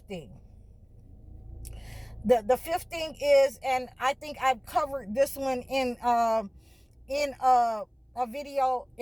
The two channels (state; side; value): identical; both; correlation 1.00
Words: thing. The fifth thing is, and I think I've covered this one in a video,